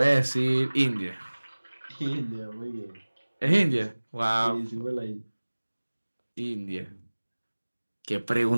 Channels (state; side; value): inverted; both; correlation -1.00